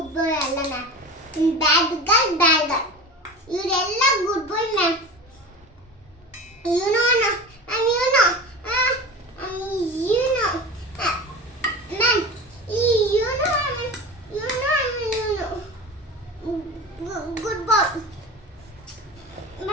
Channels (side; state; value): both; normal; correlation 0.31